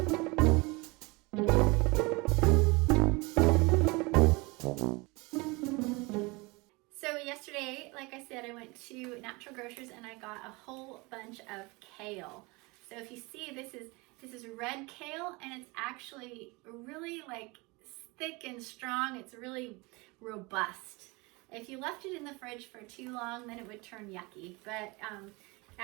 So yesterday, like I said, I went to Natural Grocers and I got a whole bunch of kale. So if you see, this is red kale and it's actually really like thick and strong. It's really robust. If you left it in the fridge for too long, then it would turn yucky. But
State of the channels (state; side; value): quieter; left; 25.8 dB